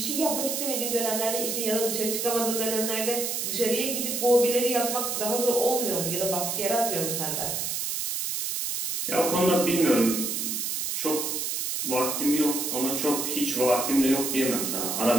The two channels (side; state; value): right; noise; hiss, 1 dB below the sound